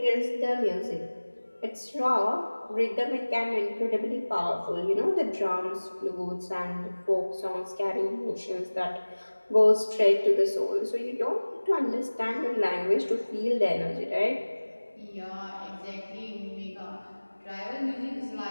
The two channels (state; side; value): inverted; both; correlation -1.00